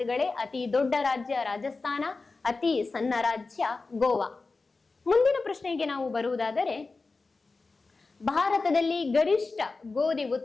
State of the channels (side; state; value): right; quieter; 3.9 dB